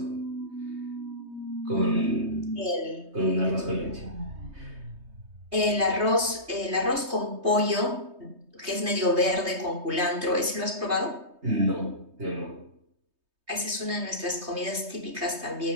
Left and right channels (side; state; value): left; late; 3.2 ms